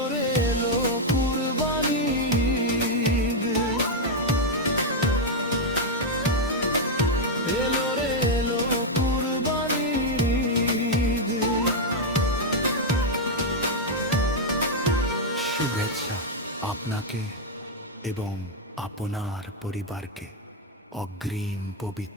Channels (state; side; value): normal; both; correlation 0.00